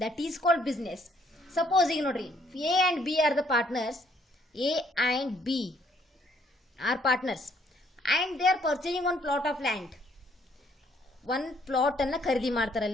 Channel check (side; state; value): both; normal; correlation 0.66